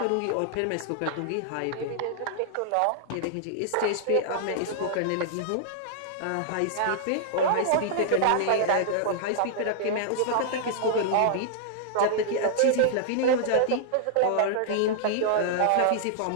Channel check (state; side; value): different; both; correlation -0.01